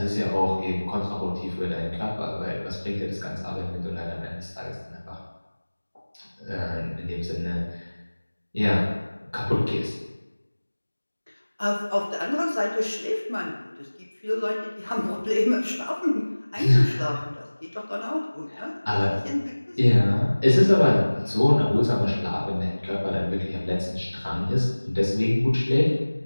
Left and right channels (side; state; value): both; inverted; correlation -1.00